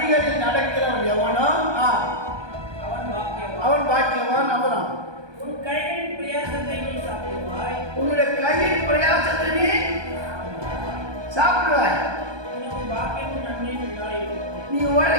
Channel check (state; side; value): late; left; 1.2 ms